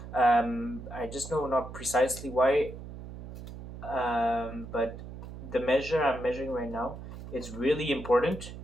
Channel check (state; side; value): noise; right; hum, 12 dB below the sound